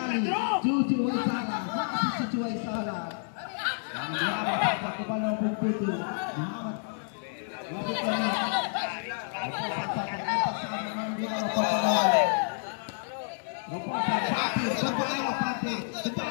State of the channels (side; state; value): right; silent; digital silence